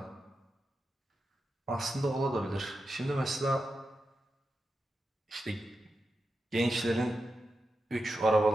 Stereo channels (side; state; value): both; normal; correlation 0.89